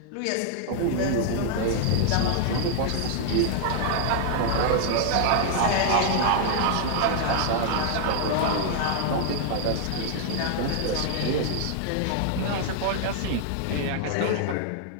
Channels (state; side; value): different; both; correlation 0.00